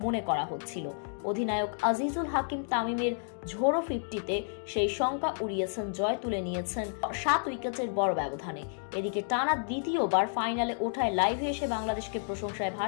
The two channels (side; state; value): right; silent; digital silence